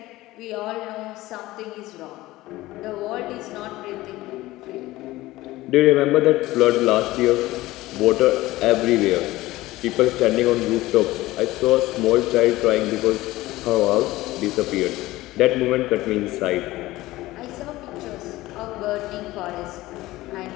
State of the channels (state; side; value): quieter; right; 17.8 dB